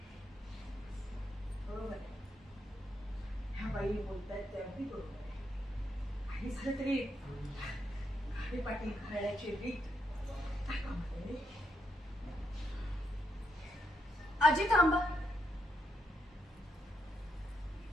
बरोबर आहे. ह्या बाई बोलतायत ते अगदी बरोबर आहे. काही झालं तरी घाटे पाटील घराण्याची रीत काय कामाला. आजी थांबा.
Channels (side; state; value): both; normal; correlation 0.79